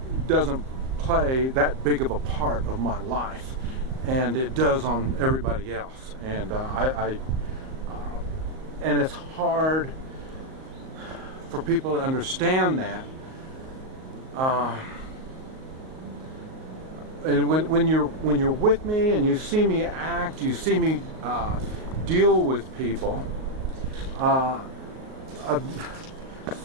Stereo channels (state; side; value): late; left; 38 ms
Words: doesn't play that big of a part of my life, and it does on everybody else. And and it's hard for people to understand that. And when you're with me and you see me act, you see me deal with people,